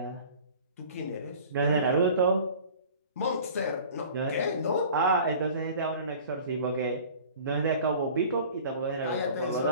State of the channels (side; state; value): both; inverted; correlation -0.44